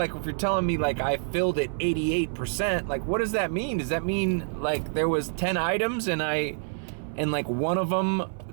if you're telling me like I filled it 88%. Like, what does that mean? Does that mean like there was 10 items and like one of them,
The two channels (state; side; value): silent; left; 58 dB below the other